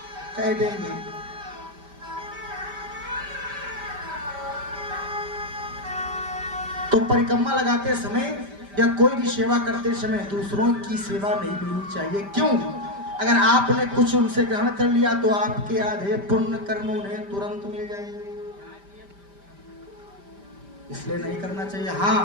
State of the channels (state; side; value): late; left; 5.1 ms